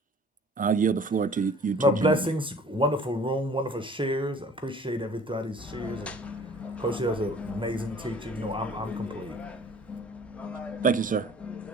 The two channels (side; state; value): both; normal; correlation 0.49